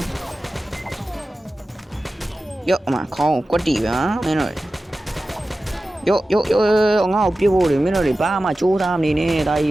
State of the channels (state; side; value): normal; both; correlation 0.95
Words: ်ယောအမခေါင်းကွက်တီပါမင်းတို့ယောငါ့ကိုပြဖို့လေမင်းတို့တွေဘာမှကြိုးစားမနေနဲ့ဒါကြီ